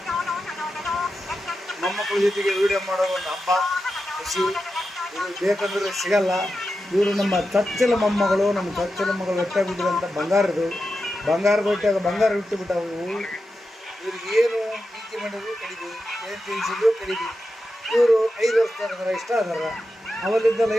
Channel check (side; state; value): both; normal; correlation 0.90